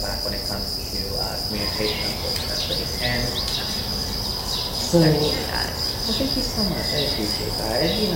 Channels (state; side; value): identical; both; correlation 1.00